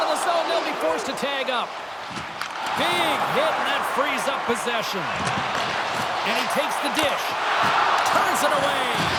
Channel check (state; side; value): identical; both; correlation 1.00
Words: of the zone. They'll be forced to tag up. Big hit, and that frees up possession. And he takes the dish. Turns it away.